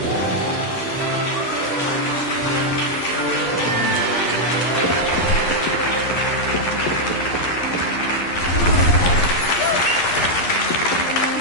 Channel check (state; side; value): late; right; 11 ms